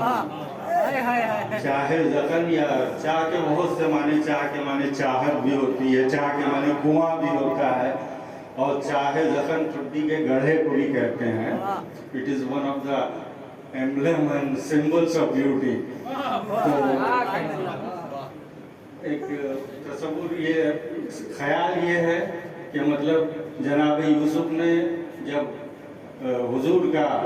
چاہے زکن یا چاہ کے بہت سے معنی، چاہ کے معنی چاہت بھی ہوتی ہے، چاہ کے معنی کنواں بھی ہوتا ہے، اور چاہے زخم ٹھڈی کے گڑھے کو بھی کہتے ہیں۔ It is one of the emblem and symbols of beauty. ایک تصور، یہ خیال یہ ہے کہ مطلب جناب یوسف نے جب حضور کا،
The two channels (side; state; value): both; identical; correlation 1.00